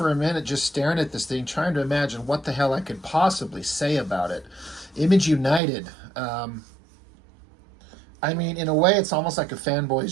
a minute just staring at this thing, trying to imagine what the hell I could possibly say about it. Image United. I mean, in a way, it's almost like a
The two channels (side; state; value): left; drops out; at 5.6 s